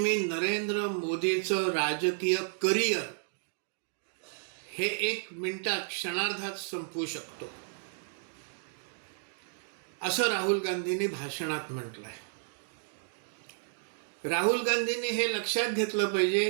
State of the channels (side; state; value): left; silent; digital silence